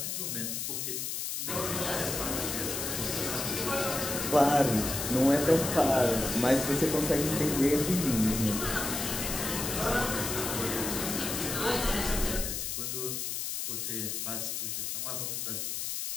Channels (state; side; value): noise; left; hiss, 3 dB below the sound